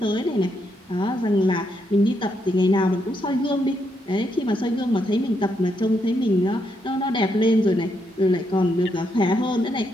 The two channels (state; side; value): normal; both; correlation 0.78